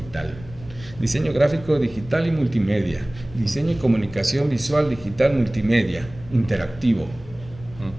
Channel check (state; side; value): noise; left; rumble, 18 dB below the sound